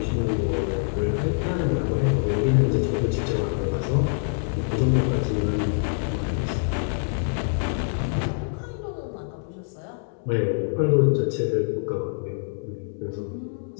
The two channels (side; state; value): right; silent; digital silence